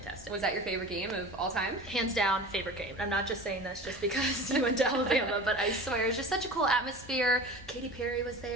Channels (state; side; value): noise; right; rumble, 23 dB below the sound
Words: Was that your favorite game of all time? Hands down, favorite game. I'm not just saying this just because you went to Alabama, but I swear it was just such a cool atmosphere. Katy Perry was